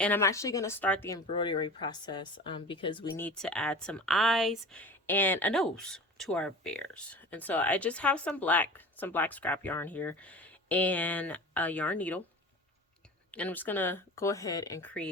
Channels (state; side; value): normal; both; correlation 0.36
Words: I'm actually going to start the embroidery process because we need to add some eyes and a nose to our bears. And so I just have some black scrap yarn here and a yarn needle, and I'm just going to go ahead and